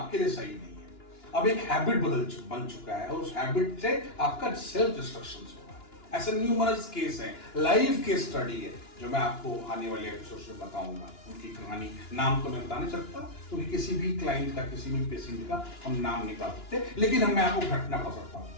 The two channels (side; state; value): right; late; 2.9 ms